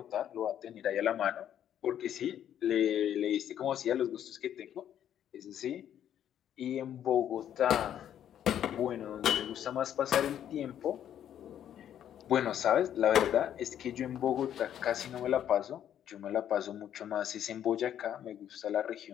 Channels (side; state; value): right; quieter; 10.2 dB